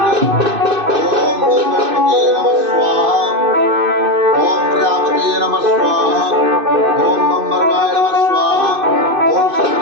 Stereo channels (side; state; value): left; late; 2.6 ms